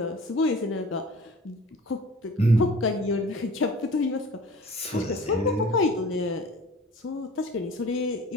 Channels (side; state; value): both; normal; correlation 0.44